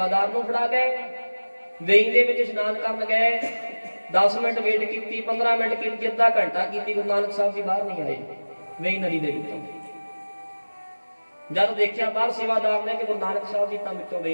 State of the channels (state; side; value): inverted; both; correlation -1.00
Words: ਨੂੰ ਫੜਾ ਗਏ, ਵੇਈ ਦੇ ਵਿੱਚ ਇਸ਼ਨਾਨ ਕਰਨ ਗਏ। 10 ਮਿੰਟ ਵੇਟ ਕੀਤੀ, 15 ਮਿੰਟ ਕੀਤੀ, ਅੱਧਾ ਘੰਟਾ ਕੀਤੀ, ਗੁਰੂ ਨਾਨਕ ਸਾਹਿਬ ਜੀ ਬਾਹਰ ਨਹੀਂ ਆਏ ਵੇਈ ਨਦੀ ਦੇ ਵਿੱਚੋਂ। ਜਦ ਦੇਖਿਆ ਬਾਹਰ ਸੇਵਾਦਾਰ ਨੇ ਕਿ ਗੁਰੂ ਨਾਨਕ ਸਾਹਿਬ ਜੀ ਤਾਂ ਵਿੱਚੋਂ